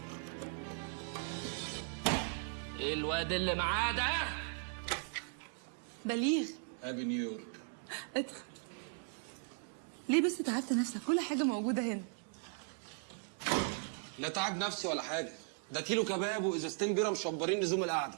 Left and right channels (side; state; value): left; silent; 53 dB below the other